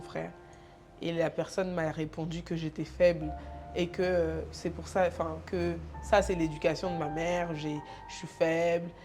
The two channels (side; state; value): both; identical; correlation 1.00